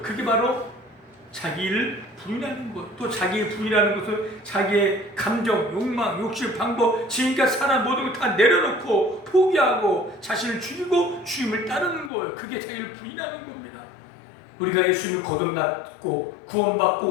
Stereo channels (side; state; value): right; drops out; at 12.1 s